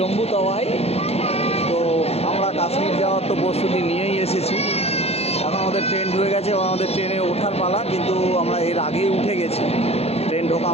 তাওয়াই। তো আমরা কাশ্মীর যাওয়ার তো প্রস্তুতি নিয়েই এসেছি। এখন আমাদের ট্রেন ঢুকে গেছে এবং আমাদের ট্রেনে ওঠার পালা, কিন্তু আমরা এর আগেই উঠে গেছি ট্রেন ঢোকা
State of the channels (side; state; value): right; late; 0.30 ms